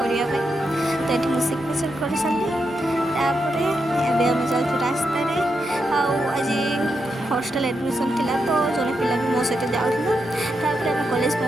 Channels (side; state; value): both; normal; correlation 0.84